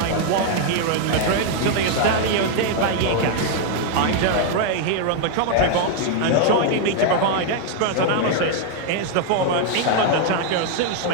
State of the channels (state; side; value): different; both; correlation 0.00